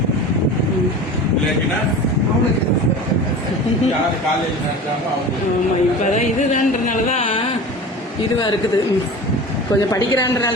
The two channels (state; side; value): normal; both; correlation 0.34